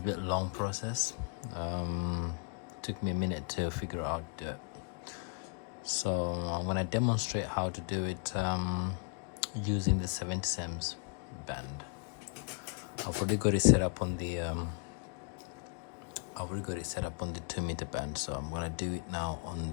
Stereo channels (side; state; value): right; quieter; 36.0 dB